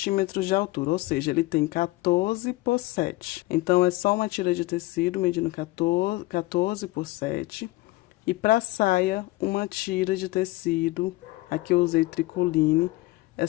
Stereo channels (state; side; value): quieter; right; 19.9 dB